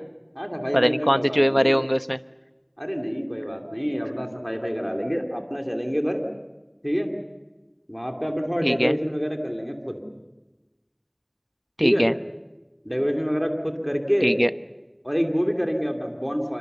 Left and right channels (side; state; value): both; identical; correlation 1.00